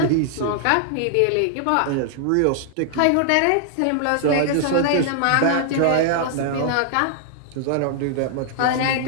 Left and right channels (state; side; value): different; both; correlation -0.01